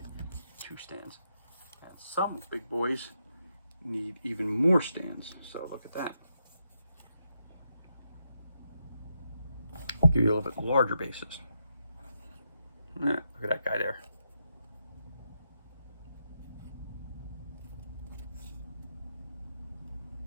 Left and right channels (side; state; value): both; inverted; correlation -0.83